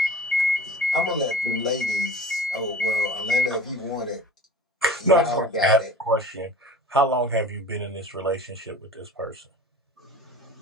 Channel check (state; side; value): normal; both; correlation 0.41